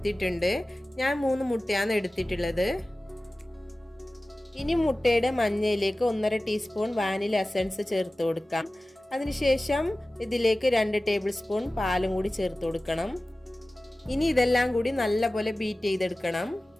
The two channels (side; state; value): both; normal; correlation 0.97